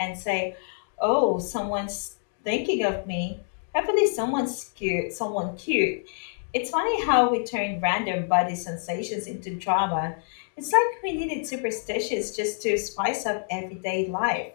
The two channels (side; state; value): right; silent; digital silence